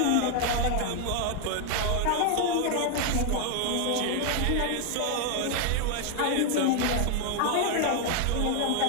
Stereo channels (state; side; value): different; both; correlation 0.01